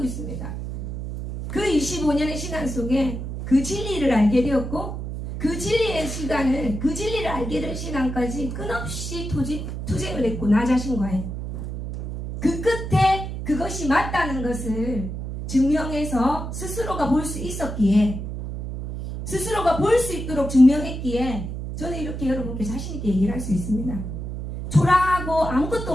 35년의 시간 속에 그 진리를 알게 되었고 그 진리의 시간을 그 진리를 알게 된 시간까지 끊없이 투쟁을 했고 나 자신과의 그 끝에 그것이 맞다는 것을 증명해서 스스로가 볼 수 있었기에 스스로가 볼 수 있도록 증명했기에 저는 이렇게 여러분께 자신있게 얘기를 할 수 있습니다. 초라하고 아무것도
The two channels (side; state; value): right; noise; hum, 6 dB below the sound